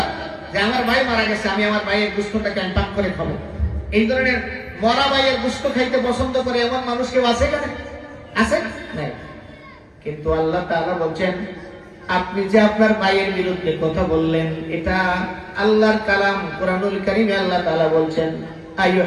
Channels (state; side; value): identical; both; correlation 1.00